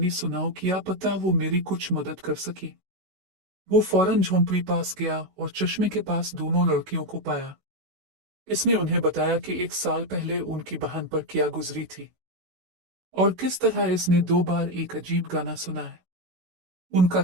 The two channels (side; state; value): left; late; 16 ms